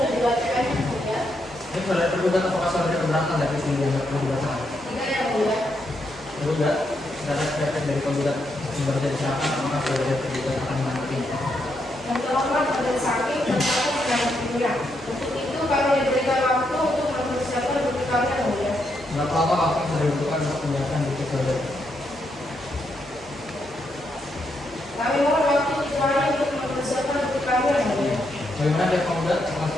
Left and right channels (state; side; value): normal; both; correlation 0.79